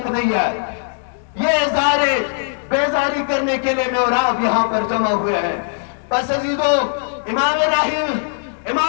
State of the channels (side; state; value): right; silent; digital silence